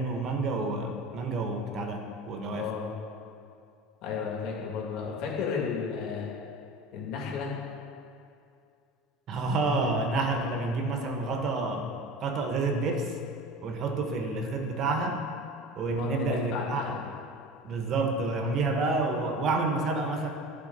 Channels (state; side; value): normal; both; correlation 0.35